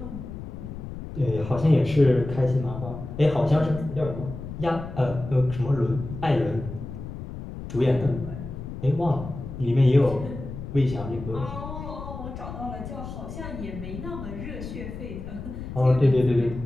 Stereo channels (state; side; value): noise; left; rumble, 9 dB below the sound